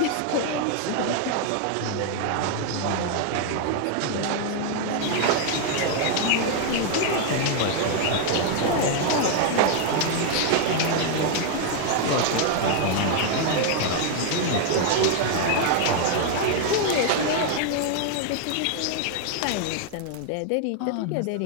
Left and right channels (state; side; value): different; both; correlation 0.00